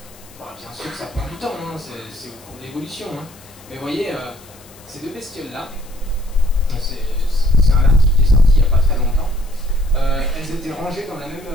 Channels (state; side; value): noise; left; hiss, 24 dB below the sound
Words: Bon, bien sûr que ça prend du temps, hein, c'est au cours de l'évolution, hein. Mais vous voyez, ces deux bestioles-là, c'est un article qui est sorti il n'y a pas très longtemps, elles étaient rangées dans la